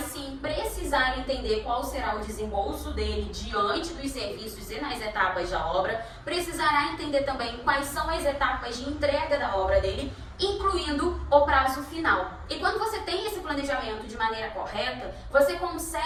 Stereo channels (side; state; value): both; identical; correlation 1.00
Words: sim precisar entender qual será o desembolso dele diante dos serviços e nas etapas da obra, precisará entender também quais são as etapas de entrega da obra dele, incluindo o prazo final. E quando você tem esse planejamento de maneira correta, você